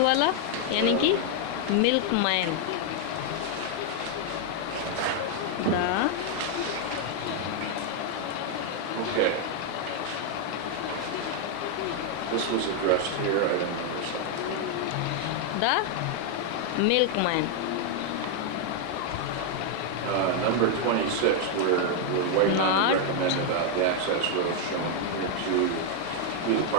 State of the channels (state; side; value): different; both; correlation 0.00